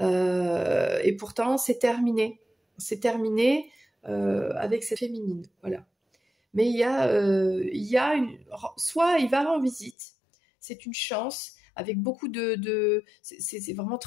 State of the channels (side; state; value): right; drops out; at 10.0 s